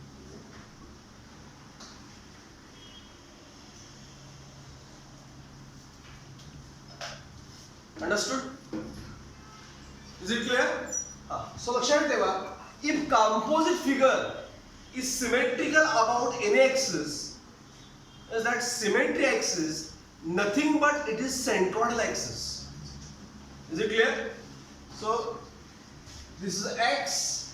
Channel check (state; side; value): identical; both; correlation 1.00